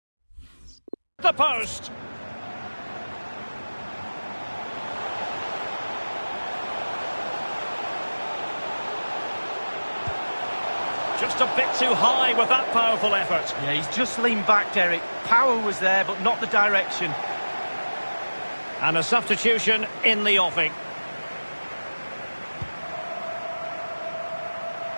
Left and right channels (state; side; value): inverted; both; correlation -1.00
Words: the post. Just a bit too high with that powerful effort. Yeah, he's just leaned back, Derek. Power was there, but not the direction. And a substitution in the offing.